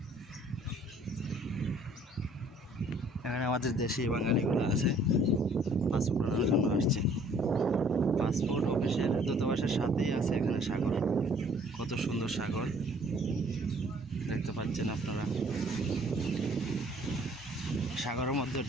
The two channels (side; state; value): both; normal; correlation 0.58